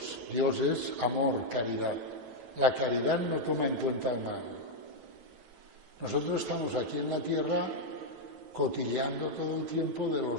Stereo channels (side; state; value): left; late; 8.9 ms